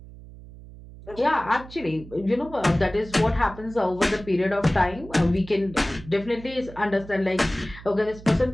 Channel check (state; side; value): noise; right; hum, 17 dB below the sound